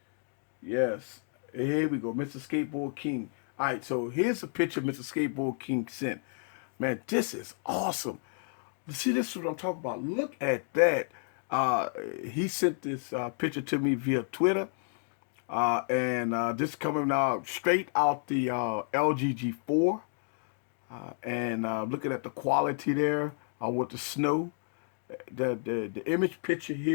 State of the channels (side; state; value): right; silent; 57 dB below the other